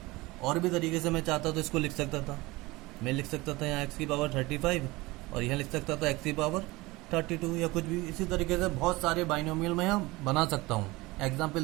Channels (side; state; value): left; quieter; 21.6 dB